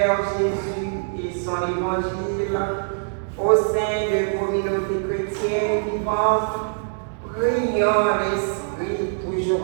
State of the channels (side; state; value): left; silent; 63 dB below the other